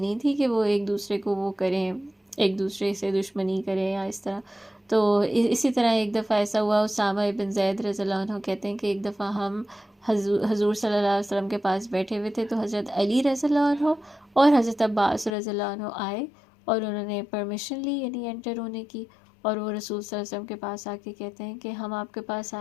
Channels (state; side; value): drops out; right; at 15.4 s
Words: تھی کہ وہ ایک دوسرے کو وہ کریں، ایک دوسرے سے دشمنی کریں یا اس طرح. تو اسی طرح ایک دفعہ ایسا ہوا، اسامہ ابن زید رضی اللہ عنہ کہتے ہیں کہ ایک دفعہ ہم حضور صلی اللہ علیہ وسلم کے پاس بیٹھے ہوئے تھے، تو حضرت علی رضی اللہ عنہ اور حضرت عباس رضی اللہ عنہ آئے، اور انہوں نے پرمیشن لی یعنی انٹر ہونے کی. اور وہ رسول صلی اللہ علیہ وسلم کے پاس آ کے کہتے ہیں کہ ہم آپ کے پاس